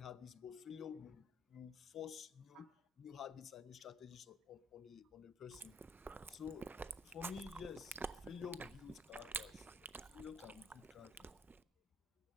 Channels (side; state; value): both; normal; correlation 0.62